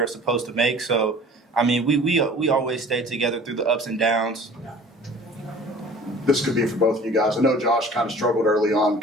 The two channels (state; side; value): normal; both; correlation 0.45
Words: supposed to make. So, I mean we always stay together through the ups and downs. This could be for both of you guys. I know Josh kind of struggled early on, a